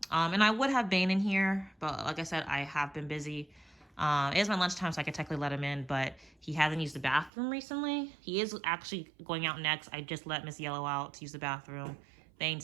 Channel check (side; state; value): left; drops out; at 7.3 s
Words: and I would have Bane in here, but like I said, I have been busy. It is my lunchtime, so I could technically let him in, but he hasn't used the bathroom recently. He is actually going out next. I just let Miss Yellow out to use the bathroom.